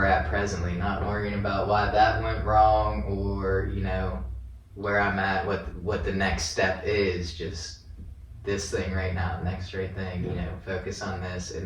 at presently, not worrying about why that went wrong, or, where I'm at, what the next step is, just this thing right now, next right thing, focus on this,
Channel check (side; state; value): both; identical; correlation 1.00